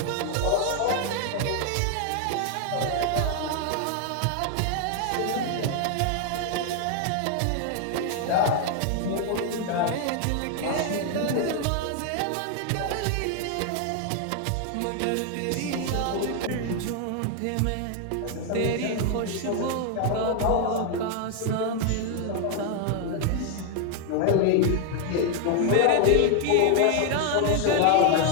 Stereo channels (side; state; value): both; different; correlation 0.00